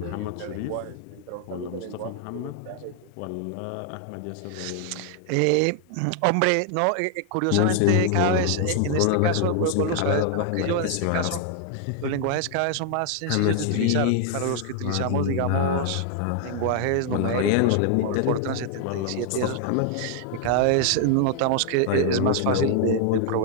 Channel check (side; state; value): both; different; correlation 0.00